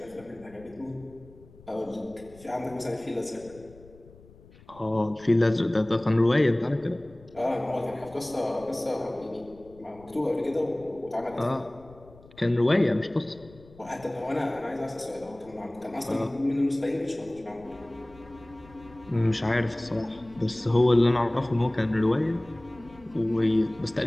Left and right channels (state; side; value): noise; left; rumble, 23 dB below the sound